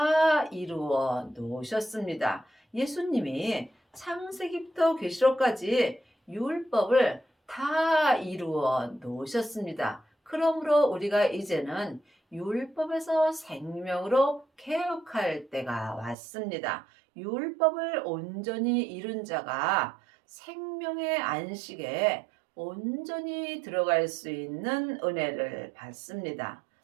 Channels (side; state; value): left; drops out; at 16.2 s